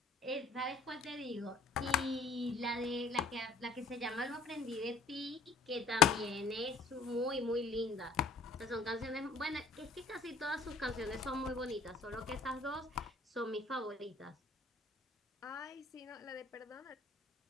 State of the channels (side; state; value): right; quieter; 3.8 dB